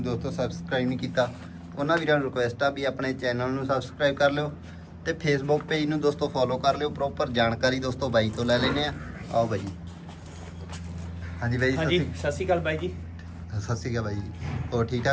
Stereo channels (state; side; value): identical; both; correlation 1.00